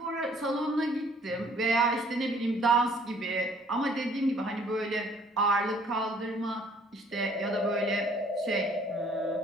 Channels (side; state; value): both; normal; correlation 0.59